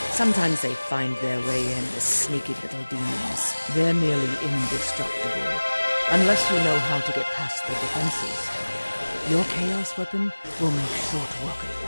Sometimes they find their way in as sneaky little demons. They're nearly indestructible, unless you know how to get past their defenses. Your chaos weapon will make short work of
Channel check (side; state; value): both; inverted; correlation -1.00